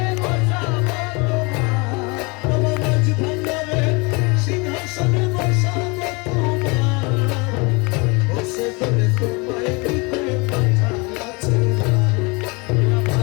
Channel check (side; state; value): right; quieter; 28.2 dB